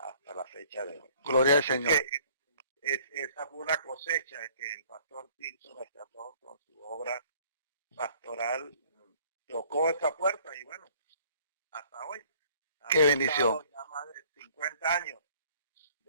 la fecha de hoy. Gloria al Así Señor. que esa fue una cosecha que el pastor Tirso rescató con su obra pastoral, tocó esa puerta y bueno, hasta hoy. Qué bendición. Ya más de 50 años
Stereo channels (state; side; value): inverted; both; correlation -0.56